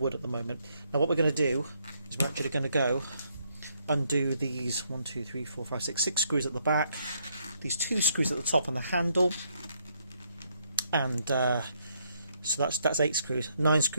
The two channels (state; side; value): inverted; both; correlation -0.73